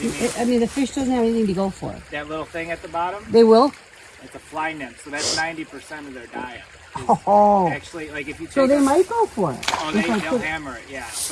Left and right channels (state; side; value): identical; both; correlation 1.00